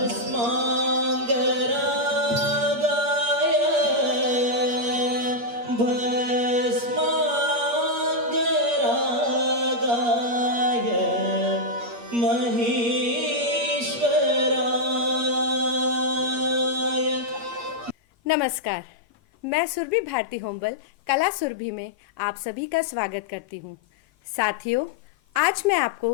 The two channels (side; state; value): left; late; 8.5 ms